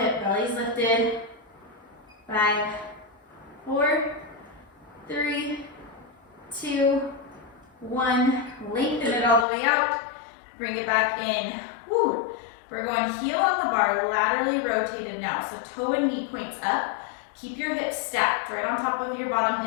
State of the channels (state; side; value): drops out; right; at 9.5 s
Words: belly's lifted. 5, 4, 3, 2, 1. Lengthen it all the way out. Bring it back in. Woo. We're going heel on the bar, laterally rotated now. So toe and knee points up. Keep your hips stacked right on top of your bottom